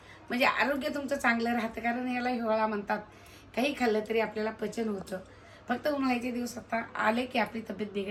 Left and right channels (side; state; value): both; identical; correlation 1.00